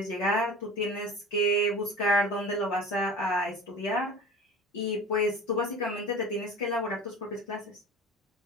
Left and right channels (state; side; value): normal; both; correlation 0.36